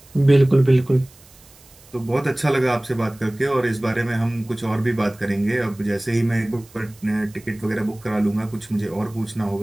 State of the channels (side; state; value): right; noise; hiss, 26 dB below the sound